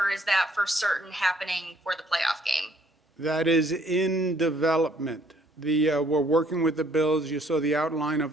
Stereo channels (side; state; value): both; normal; correlation 0.63